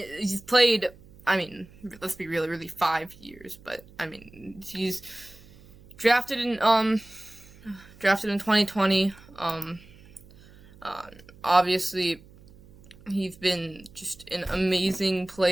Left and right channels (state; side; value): noise; right; hum, 23 dB below the sound